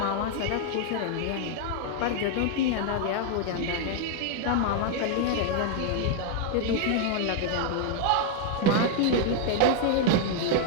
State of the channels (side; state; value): both; different; correlation 0.00